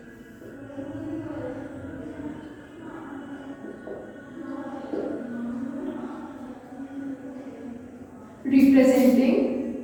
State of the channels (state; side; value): identical; both; correlation 1.00